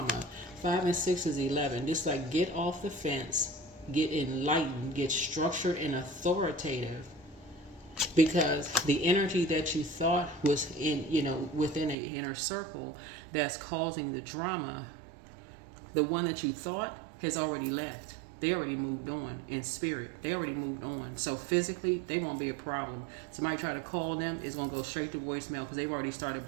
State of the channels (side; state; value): left; drops out; at 12.0 s